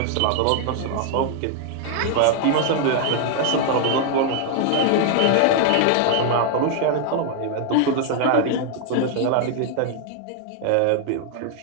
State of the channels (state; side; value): different; both; correlation 0.00